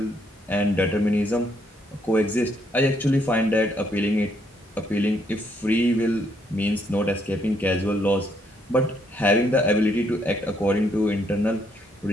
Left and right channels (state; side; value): normal; both; correlation 0.72